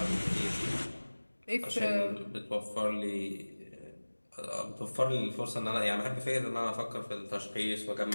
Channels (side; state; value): both; inverted; correlation -1.00